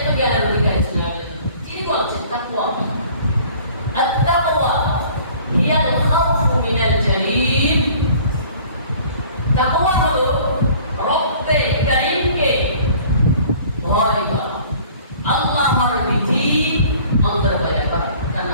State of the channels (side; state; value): both; inverted; correlation -0.51